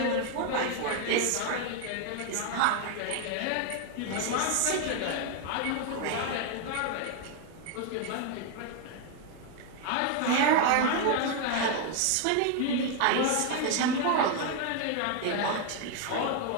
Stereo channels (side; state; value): both; different; correlation 0.01